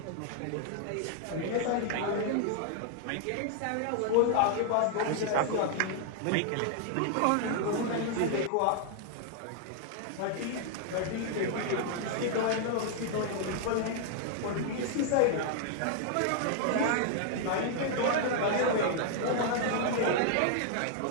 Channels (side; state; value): both; different; correlation 0.00